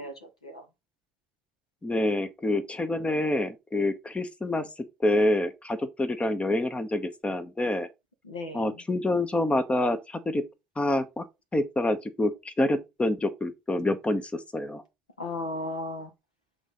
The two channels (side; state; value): both; normal; correlation 0.82